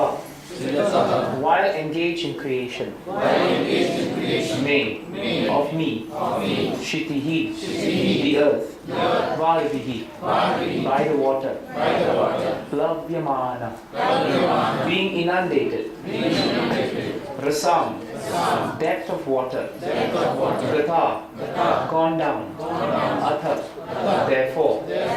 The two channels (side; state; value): both; identical; correlation 1.00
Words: while engaged in creation, may of me, Shitihi, the earth, Varvihi, by the water, Plavyamana, being inundated, Rasam, depth of water, Gata, gone down, Atha, therefore,